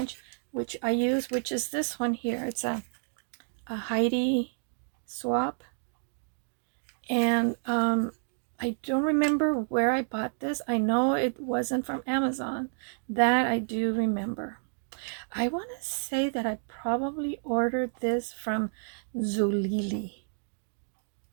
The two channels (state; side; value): silent; left; digital silence